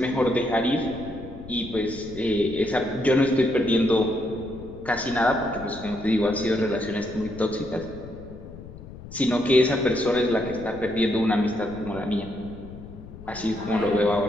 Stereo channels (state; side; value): noise; left; rumble, 15 dB below the sound